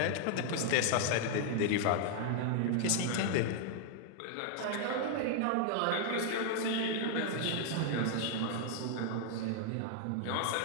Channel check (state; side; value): different; both; correlation 0.00